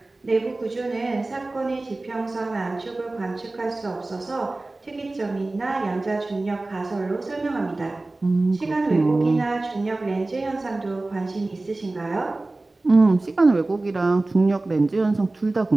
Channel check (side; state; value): left; quieter; 3.0 dB